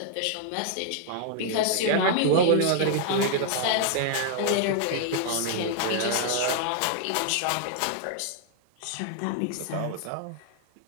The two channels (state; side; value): different; both; correlation 0.00